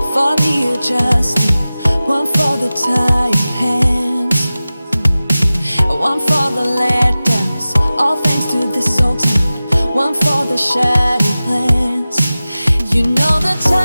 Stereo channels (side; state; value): both; inverted; correlation -0.97